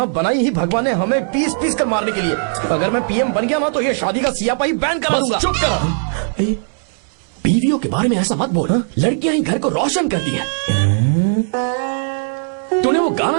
बनाई ही भगवान ने हमें पीस पीस कर मारने के लिए। अगर मैं पीएम बन गया ना तो ये शादी का सियापाही बैन करा दूंगा। चुप कर। बीवियों के बारे में ऐसा मत बोल, लड़कियां ही घर को रोशन करती हैं। तूने वो गाना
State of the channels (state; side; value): silent; left; 67 dB below the other